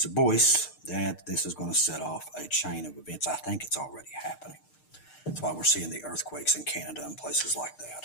Boyce, that this is going to set off a chain of events. I think it's already happening. That's why we're seeing the earthquakes in Canada and places like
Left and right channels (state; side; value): late; right; 6.6 ms